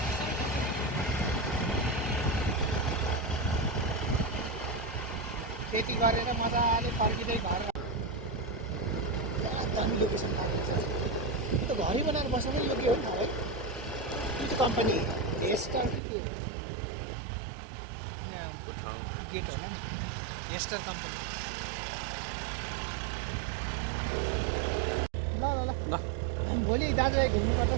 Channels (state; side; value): drops out; left; at 16.0 s